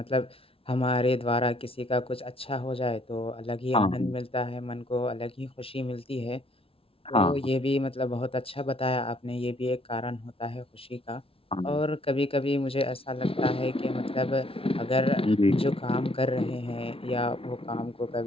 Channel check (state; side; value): late; right; 0.26 ms